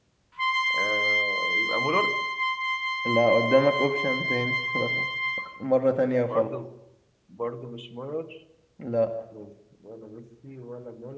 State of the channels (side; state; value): both; identical; correlation 1.00